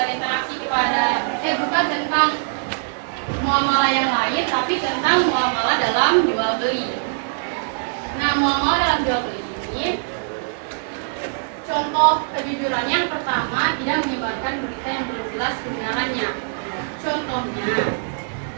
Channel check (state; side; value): silent; left; digital silence